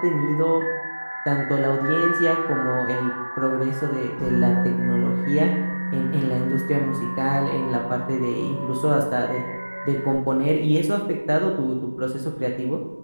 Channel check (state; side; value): inverted; both; correlation -1.00